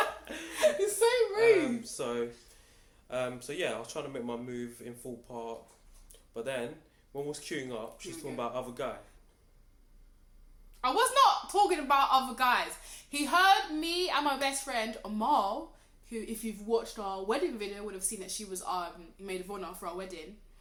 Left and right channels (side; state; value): both; identical; correlation 1.00